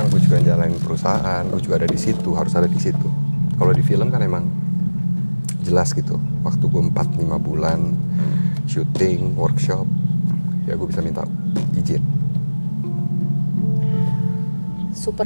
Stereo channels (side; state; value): both; inverted; correlation -1.00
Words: gue juga jalanin perusahaan, gue juga ada di situ, harus ada di situ. Kalau di film kan emang jelas gitu, waktu gue 4-5 bulan syuting, workshop, ya gue bisa minta izin.